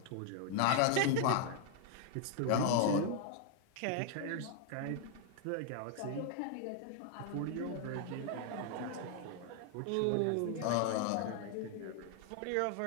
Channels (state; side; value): different; both; correlation 0.00